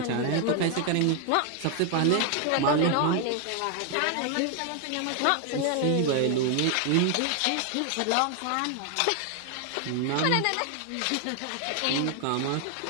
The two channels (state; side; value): different; both; correlation 0.00